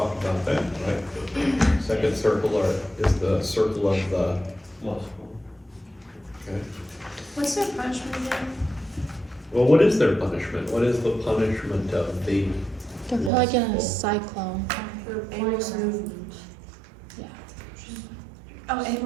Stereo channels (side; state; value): left; drops out; at 13.3 s